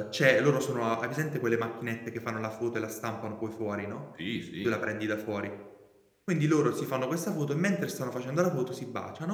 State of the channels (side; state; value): both; identical; correlation 1.00